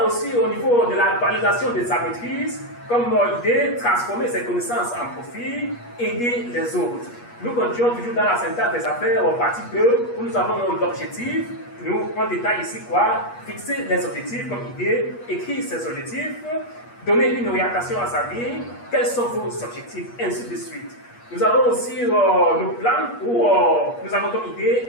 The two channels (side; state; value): right; late; 8.4 ms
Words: aussi au niveau de la validation de sa maîtrise, comme idée, transformer ses connaissances en profit, aider les autres. Nous continuons toujours dans la syntaxe des affaires, en partie 2, où nous avons l'objectif. Nous, on détaille ici quoi? Fixer les objectifs comme idée, écrire ses objectifs, donner une orientation à sa vie, quels sont vos objectifs, ainsi de suite. Nous avons aussi le plan où nous avons comme idée